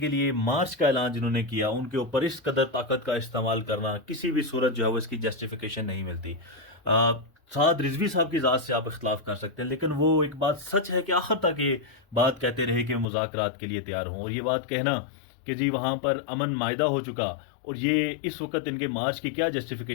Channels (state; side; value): drops out; right; at 13.1 s